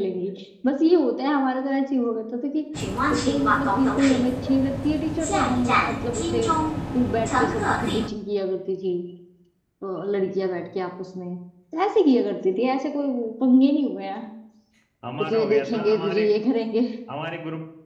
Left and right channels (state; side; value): identical; both; correlation 1.00